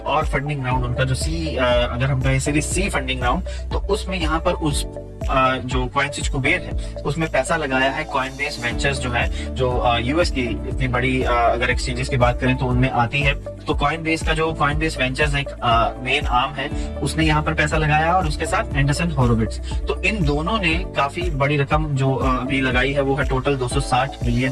और फंडिंग राउंड, उनका जो अगर हम कहें सीरीज सी फंडिंग राउंड, तो उसमें यहाँ पर उस जो कॉइनस्विच कुबेर है उसमें पैसा लगाया है कॉइनबेस वेंचर्स, जो है जो यूएस की इतनी बड़ी अगर एक्सचेंजेस की बात करें तो उनमें आती है। तो कॉइनबेस का जो कॉइनबेस वेंचर्स एक मेन आर्म है, उसने यहाँ पर पैसा लगाया और उसके साथ एंडरसन होरोविट्ज। तो इन दोनों ने काफी बड़ी रकम जो अभी लगाई है वो है टोटल $260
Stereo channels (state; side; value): identical; both; correlation 1.00